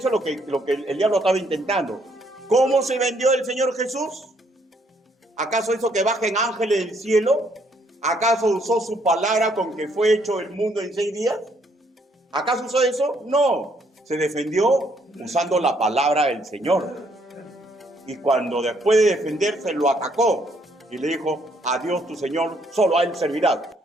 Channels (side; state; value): both; normal; correlation 0.69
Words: es lo que el diablo estaba intentando. ¿Cómo se vendió el Señor Jesús? ¿Acaso hizo que bajen ángeles del cielo? ¿Acaso usó su palabra con que fue hecho el mundo en 6 días? ¿Acaso usó eso? No. Se defendió usando la palabra del Señor. Y cuando después de defenderse lo atacó y le dijo, a Dios tu Señor, solo a Él servirás.